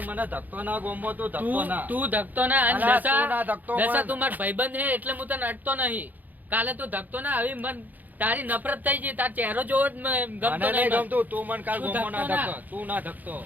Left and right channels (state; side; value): late; left; 0.083 ms